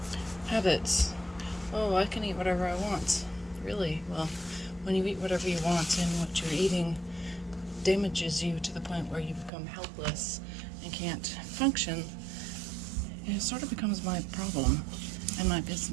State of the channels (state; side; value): drops out; left; at 9.5 s